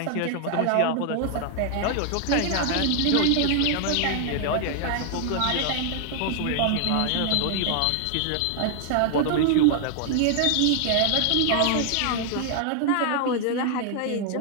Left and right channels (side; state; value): both; different; correlation 0.00